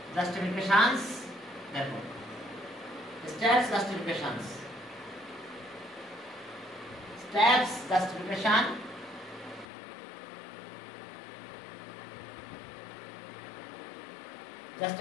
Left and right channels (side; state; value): right; drops out; at 9.7 s